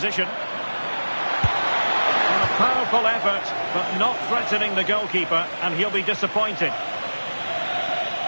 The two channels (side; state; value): both; inverted; correlation -1.00